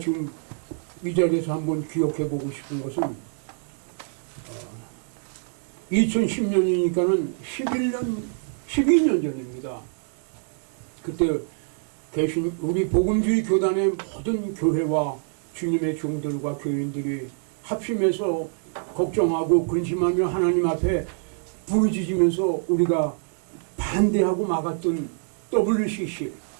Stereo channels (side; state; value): left; silent; 61 dB below the other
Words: 이 자리에서 한번 기억해 보고 싶은 것은 2010년이니까는 12년 전입니다. 그때 계신 우리 복음주의 교단의 모든 교회와 주님의 종들과 교인들이 합심해서 걱정하고 근심하며 하나님 앞에 부르짖으면서 우리가 반대하고 막았던 WCC